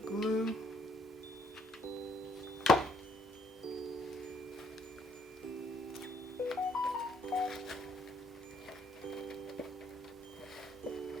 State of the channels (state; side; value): normal; both; correlation 0.68